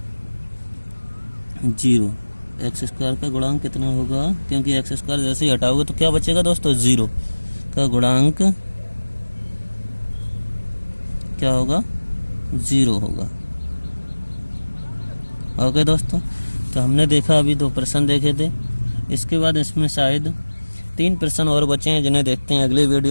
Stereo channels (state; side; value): inverted; both; correlation -1.00